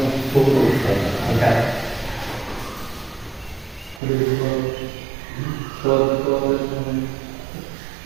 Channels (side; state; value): left; drops out; at 4.0 s